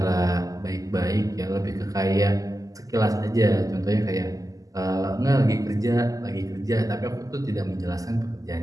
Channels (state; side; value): late; left; 0.17 ms